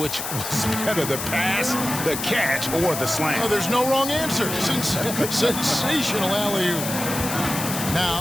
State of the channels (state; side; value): noise; left; hiss, 5 dB below the sound